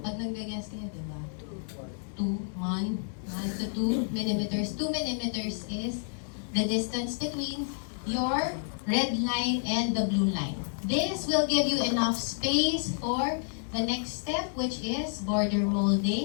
nag-guess kayo, di ba? 1 to 2 millimeters. 2 millimeters is the distance between your red line and the blue line. This will give you enough space for the next step, which is border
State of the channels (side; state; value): right; silent; digital silence